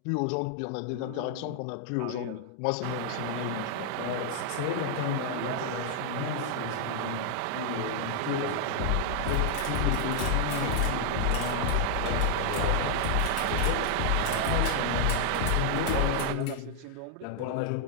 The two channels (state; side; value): different; both; correlation 0.00